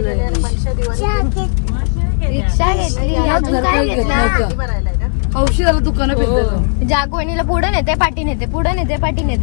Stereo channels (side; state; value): right; silent; 60 dB below the other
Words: घेतली. अजून काय घेतलं? औषधाला दुकानात जागवणीला पुढे नेते पाठी नेते, पुढे नेते पाठी